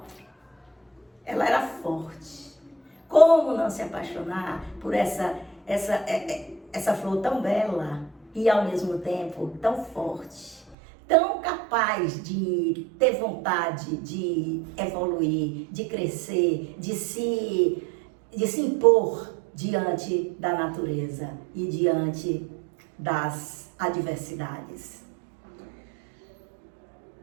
Ela era forte. Como não se apaixonar por essa flor tão bela e ao mesmo tempo tão forte, tão capaz de ter vontade de evoluir, de crescer, de se impor diante da natureza e diante das adversidades.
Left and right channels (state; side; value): drops out; left; at 10.8 s